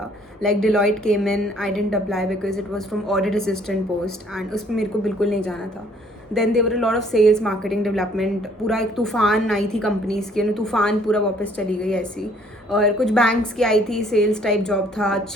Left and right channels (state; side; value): normal; both; correlation 0.61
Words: Like Deloitte came in, I didn't apply because it was from audit assistant post and उसमें मेरे को बिल्कुल नहीं जाना था. Then there were a lot of sales marketing development, पूरा एक तूफान आई थी कंपनीज़ की, तूफान पूरा वापस चली गई ऐसी. और कुछ बैंक्स की आई थी, सेल्स टाइप जॉब था,